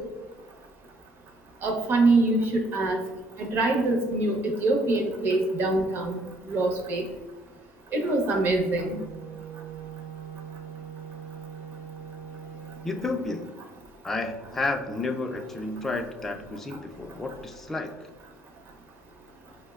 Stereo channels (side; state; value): both; normal; correlation 0.67